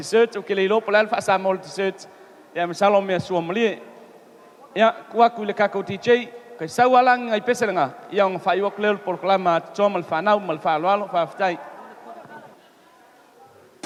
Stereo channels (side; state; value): both; identical; correlation 1.00